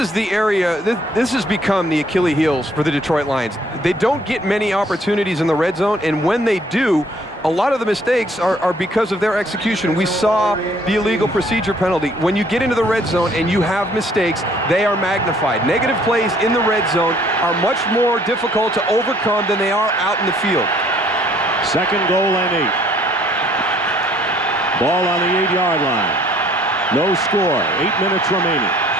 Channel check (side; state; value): both; normal; correlation 0.61